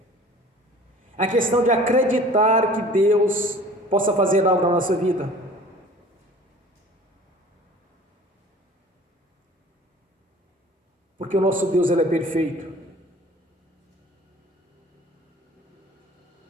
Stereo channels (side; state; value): both; normal; correlation 0.47